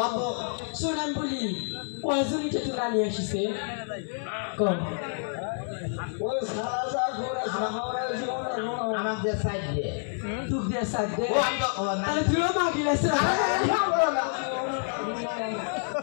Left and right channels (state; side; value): silent; right; 59 dB below the other